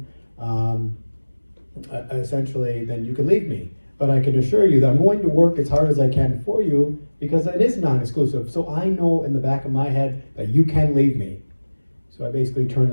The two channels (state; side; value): inverted; both; correlation -1.00